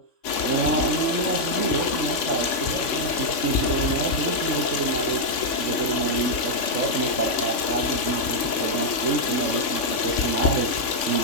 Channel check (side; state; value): right; late; 3.6 ms